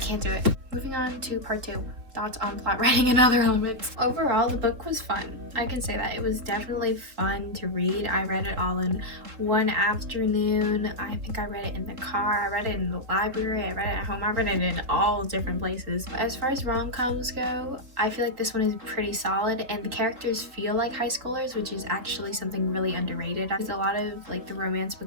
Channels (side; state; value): left; late; 3.6 ms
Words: do it. Moving on to part 2. Thoughts on plot writing and other elements. Overall, the book was fun. I can say that. It was definitely fun to read. I read it all in one afternoon. I think I read it in the car. I read it in the library. I read it at home. I read it in all different places. As far as rom-coms go, I feel like this one is pretty solid and the characters feel like high schoolers, which is actually something really underrated. Because a lot of like the romance